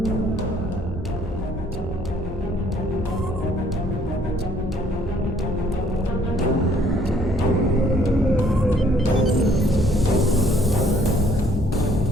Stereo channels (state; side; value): noise; left; hum, 14 dB below the sound